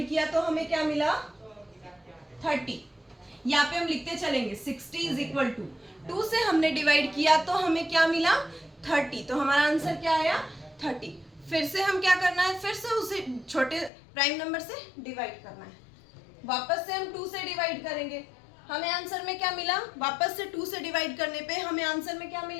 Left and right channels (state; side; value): drops out; right; at 13.9 s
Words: किया तो हमें क्या मिला? 30। यहाँ पे हम लिखते चलेंगे 60 इज इक्वल टू 2 से हमने डिवाइड किया तो हमें क्या मिला? 30। तो हमारा आंसर क्या आया? 30। फिर से हम क्या करना है? फिर से उसे छोटे प्राइम नंबर से डिवाइड करना है। वापस से हम 2 से डिवाइड करेंगे, हमें आंसर में क्या मिला? वापस से 2 से डिवाइड करने पे हमें आंसर में क्या